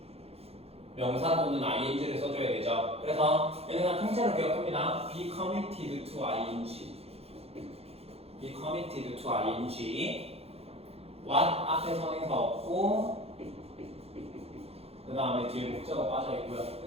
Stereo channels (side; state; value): left; late; 0.29 ms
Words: 명사 또는 ing를 써줘야 되죠. 그래서 얘는 그냥 통째로 기억합니다. be committed to ing. be committed to ing. what 앞에 선행사 없고 그 다음에 뒤에 목적어 빠져있고요.